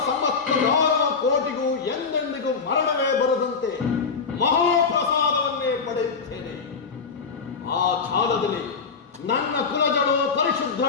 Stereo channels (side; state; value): right; quieter; 5.2 dB